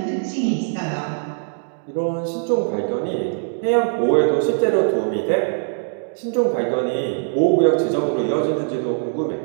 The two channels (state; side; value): silent; left; digital silence